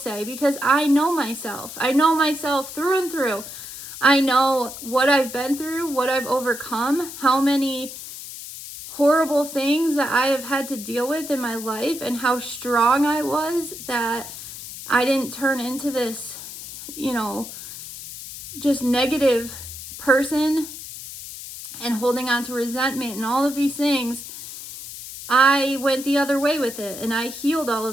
because I know myself. I know myself through and through. I know what I've been through, what I've overcome, how many horrible things that I have had to deal with in my life, and how strong I was that I didn't turn into this, just negative person and holding on to resentment and all of these things. I went the other way with it, and I healed all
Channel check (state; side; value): noise; left; hiss, 11 dB below the sound